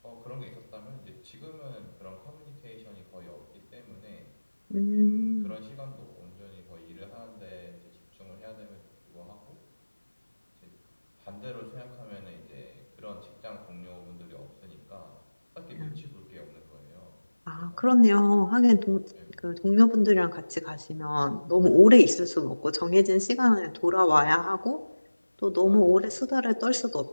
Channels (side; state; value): both; inverted; correlation -1.00